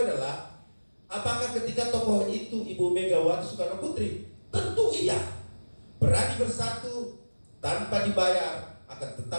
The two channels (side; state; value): both; inverted; correlation -1.00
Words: adalah, apakah ketika tokoh itu Ibu Megawati Soekarno Putri? Tentu iya. Berani Bersatu tanpa dibayar akan